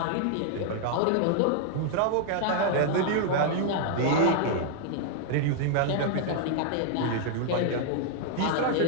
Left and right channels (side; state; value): both; different; correlation 0.00